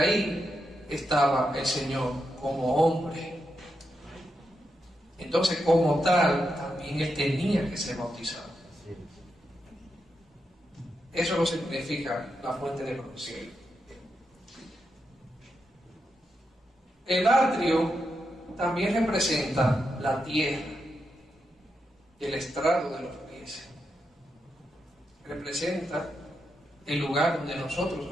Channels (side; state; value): both; normal; correlation 0.85